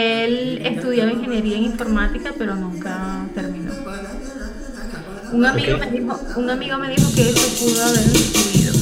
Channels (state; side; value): identical; both; correlation 1.00